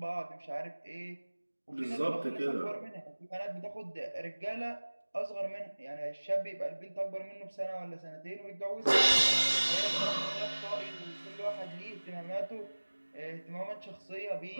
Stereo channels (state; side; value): inverted; both; correlation -1.00